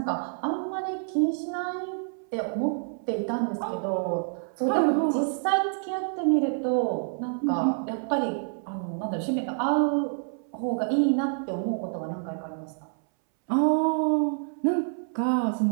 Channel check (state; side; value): silent; left; 60 dB below the other